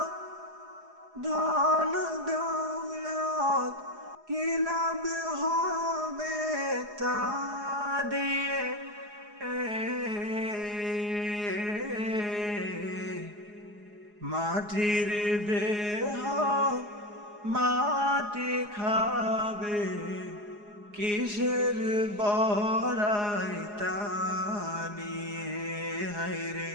ধন দৌলত কি লাভ হবে তা দিয়ে। মাটির দেহ মাটি খাবে, কিসের বড়াই তা নিয়ে হায়রে।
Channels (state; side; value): late; left; 4.8 ms